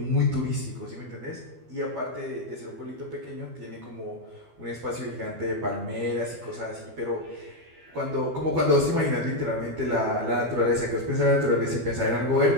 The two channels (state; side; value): late; left; 12 ms